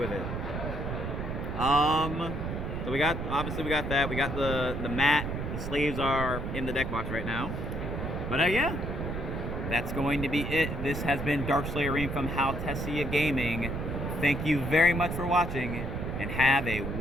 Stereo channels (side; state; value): right; noise; rumble, 4 dB below the sound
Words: it. So we got that. We got the mat. The sleeves are in the deck box right now. But yeah, that's going to be it. This has been Darkslayer Arim from Haltessiagaming. Thank you very much for watching, and have a